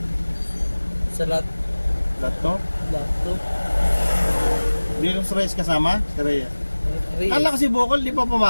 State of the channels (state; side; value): inverted; both; correlation -1.00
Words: Sa lot. Lahat to? Lot to. Hindi yung Reyes kasama? Si Reyes. Reyes. Kala ko si Bocol, di pa